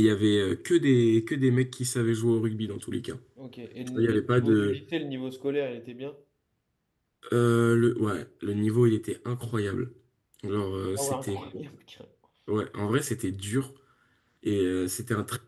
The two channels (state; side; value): identical; both; correlation 1.00